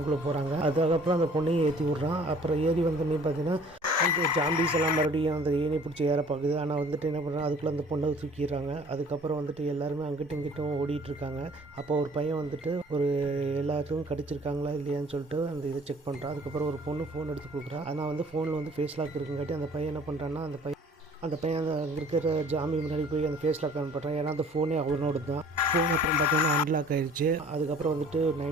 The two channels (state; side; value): normal; both; correlation 0.52